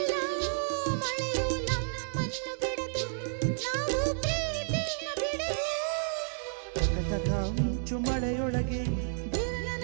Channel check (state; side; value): silent; left; digital silence